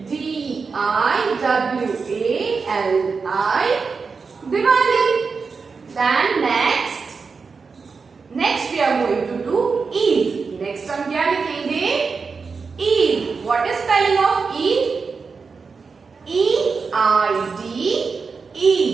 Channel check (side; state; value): left; quieter; 5.0 dB